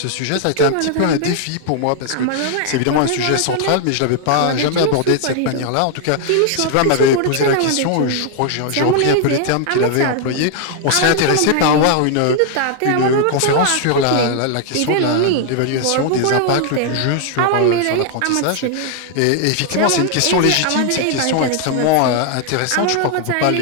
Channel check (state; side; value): different; both; correlation 0.00